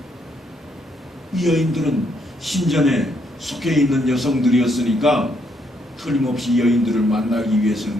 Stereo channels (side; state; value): both; normal; correlation 0.73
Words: 이 여인들은 신전에 속해 있는 여성들이었으니까 틀림없이 여인들을 만나기 위해서는